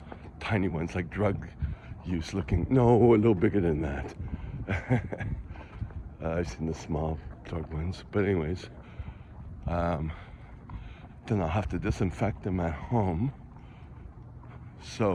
tiny ones, like drug use looking. No, a little bigger than that. I've seen the small drug ones, but anyways, then I'll have to disinfect them at home.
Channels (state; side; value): identical; both; correlation 1.00